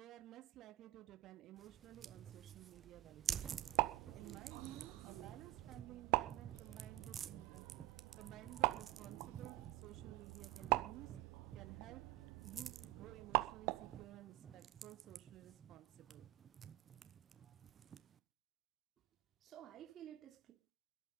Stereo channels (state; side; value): quieter; left; 16.2 dB